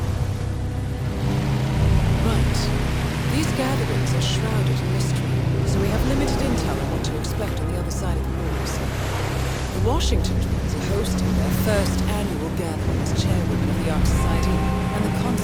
Right. These gatherings are shrouded in mystery, so we have limited intel on what to expect on the other side of the walls. The Washington twins are hosting their first annual gathering as chairwomen of the Ark Society, and the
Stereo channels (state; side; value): identical; both; correlation 1.00